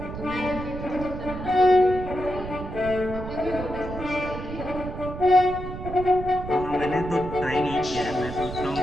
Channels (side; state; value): right; noise; rumble, 9 dB below the sound